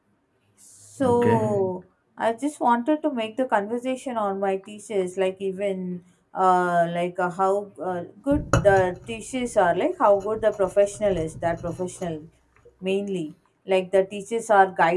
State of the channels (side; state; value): both; identical; correlation 1.00